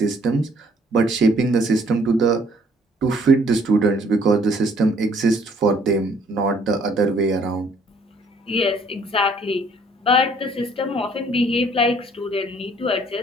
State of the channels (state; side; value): normal; both; correlation 0.61